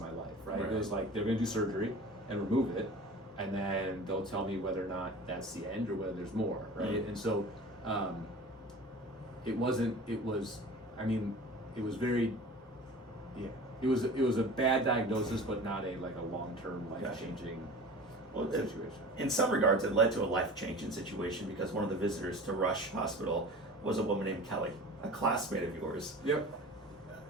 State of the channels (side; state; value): both; normal; correlation 0.38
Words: my life, right? It was like, they're gonna do surgery and remove it, and then they'll tell me whether or not that's the end or whether there's more, right? And so it was a bad diagnosis, but not a long-term life-changing situation. In some regards, it led to a life-changing situation, because one of the visitors to Rush Hospital was a woman named Kelly, a classmate of yours. Yep.